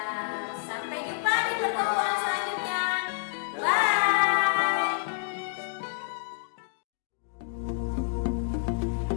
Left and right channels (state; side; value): silent; right; digital silence